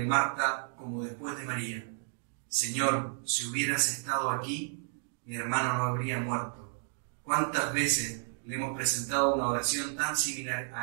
como después de María. Señor, si hubieras estado aquí, mi hermano no habría muerto. ¿Cuántas veces le hemos presentado una oración tan similar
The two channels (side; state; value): left; silent; digital silence